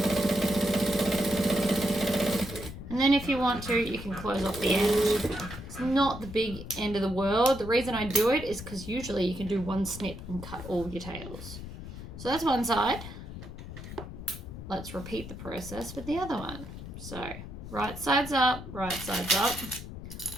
And then if you want to, you can close off the end. It's not the big end of the world. The reason I do it is because usually you can do one snip and cut all your tails. So that's one side. Let's repeat the process with the other one. So right side's up,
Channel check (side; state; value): left; noise; rumble, 11 dB below the sound